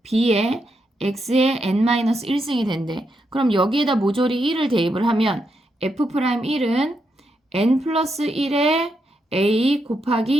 b의 x의 n-1승이 된대. 그럼 여기에다 모조리 1을 대입을 하면 f'1은 n 플러스 1의 a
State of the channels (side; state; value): both; normal; correlation 0.82